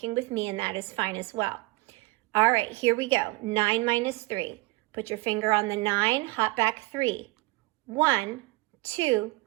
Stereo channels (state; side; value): quieter; left; 22.4 dB